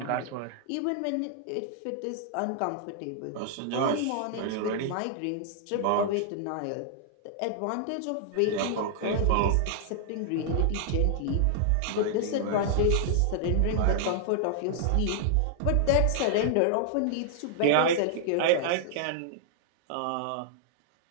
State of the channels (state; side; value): different; both; correlation -0.01